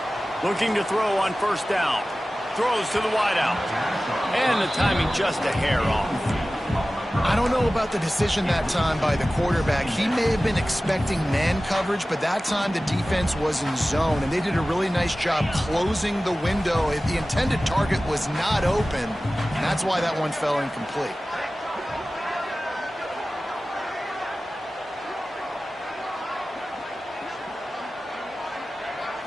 Looking to throw on first down. Throws to the wideout. And the timing just a hair off. I don't know about the decision that time by the quarterback. He may have been expecting man coverage, but that time the defense was in zone, and they did a really nice job closing the window. The intended target was not open, and that's why that one fell incomplete.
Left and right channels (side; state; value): both; normal; correlation 0.96